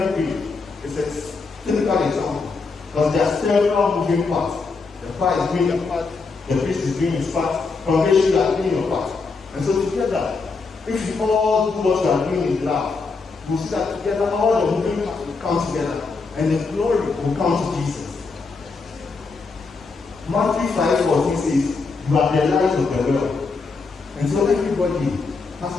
week, is a typical example. Because there are several moving parts. The choir is doing their part, the priest is doing his part, congregation you are doing your part. And so together, if we all do what we are doing in love, we'll see that together all the moving parts will come together and the glory will come to Jesus. Matthew 5:14 says, you are the light of the world. And so everybody has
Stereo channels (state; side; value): quieter; right; 4.3 dB